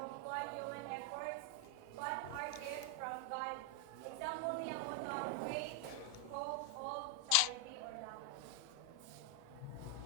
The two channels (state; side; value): different; both; correlation 0.00